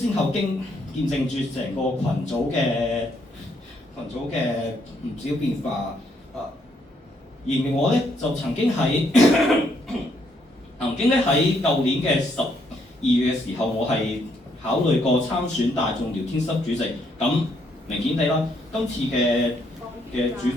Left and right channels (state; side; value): normal; both; correlation 0.72